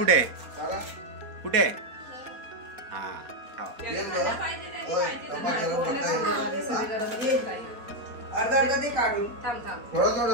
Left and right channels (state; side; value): late; left; 4.2 ms